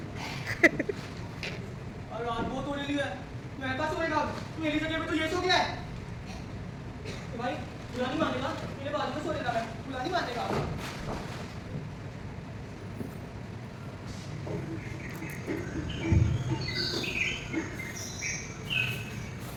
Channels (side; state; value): both; identical; correlation 1.00